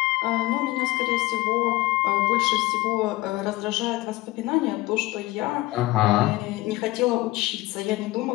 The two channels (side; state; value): right; quieter; 19.4 dB